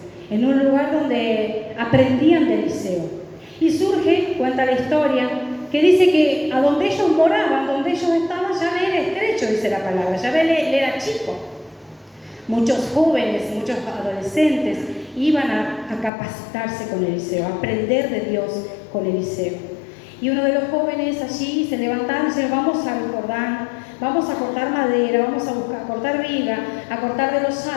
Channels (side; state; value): right; drops out; at 16.1 s